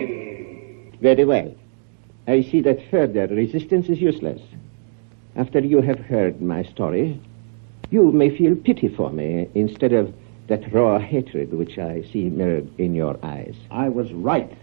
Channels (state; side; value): silent; left; digital silence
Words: Very well. I see that further resistance is useless. After you have heard my story, you may feel pity for me instead of that raw hatred which I see mirrored in your eyes. I was right.